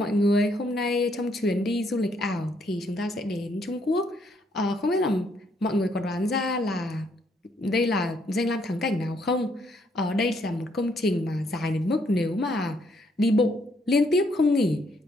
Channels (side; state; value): both; normal; correlation 0.71